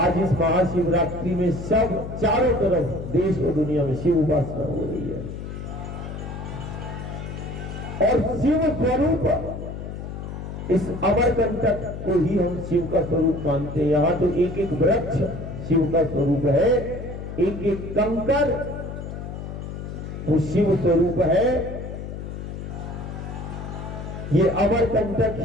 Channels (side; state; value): left; noise; hum, 8 dB below the sound